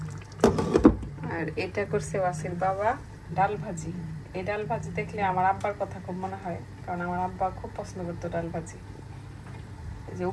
আর এটা করছে ওয়াসির বাবা ডাল ভাজি। এই ডাল ভাজি দেখলে আমার আব্বার কথা খুব মনে হয়, কারণ আমার আব্বা খুব পছন্দ করতো ডাল ভাজি। এই যে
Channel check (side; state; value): both; identical; correlation 1.00